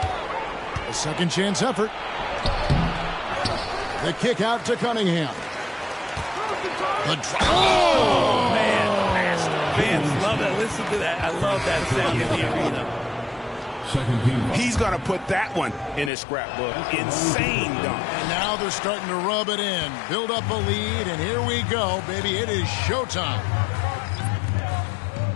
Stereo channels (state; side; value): drops out; right; at 16.1 s